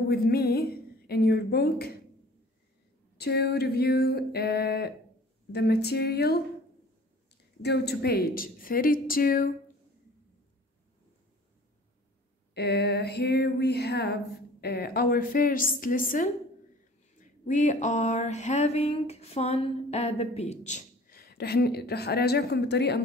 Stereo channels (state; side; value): normal; both; correlation 0.48